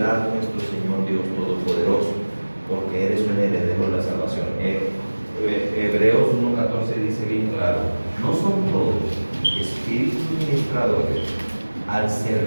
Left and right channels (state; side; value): inverted; both; correlation -1.00